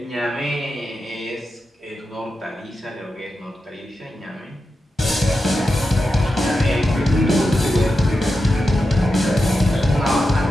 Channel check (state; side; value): normal; both; correlation 0.89